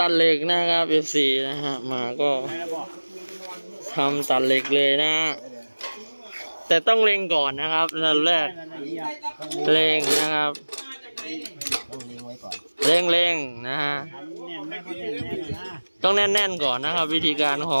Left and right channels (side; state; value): both; inverted; correlation -1.00